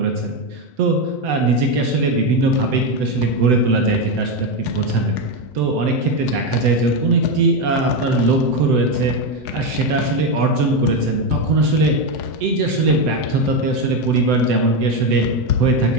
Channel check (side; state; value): left; late; 7.9 ms